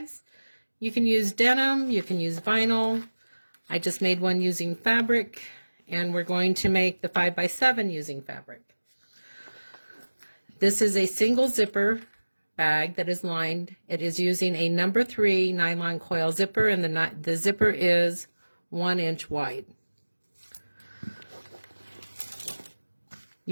You can use denim, you can use vinyl. I just made one using fabric, and we're going to make the 5x7 using fabric. This is a single zipper bag that is lined. It is using a number 3 nylon coil zipper, and the zipper is 1 inch wide.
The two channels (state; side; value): inverted; both; correlation -1.00